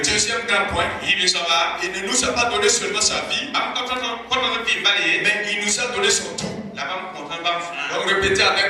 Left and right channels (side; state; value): both; identical; correlation 1.00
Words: grand point, il ne nous a pas donné seulement sa vie, mais il nous a donné son tout. Donc répétez